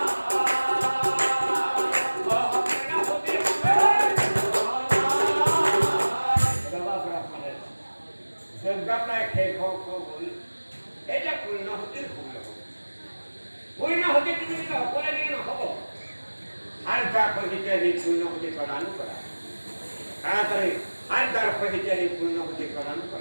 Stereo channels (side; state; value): both; inverted; correlation -1.00